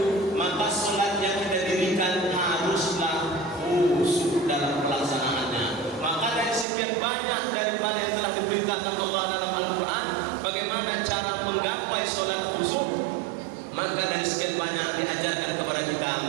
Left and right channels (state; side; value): drops out; left; at 6.7 s